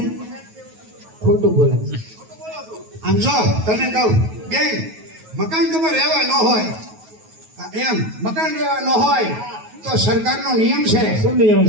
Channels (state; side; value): late; left; 9.3 ms